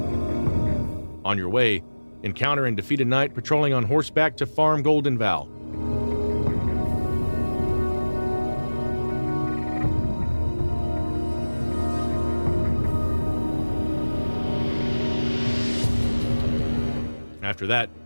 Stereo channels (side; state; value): both; inverted; correlation -1.00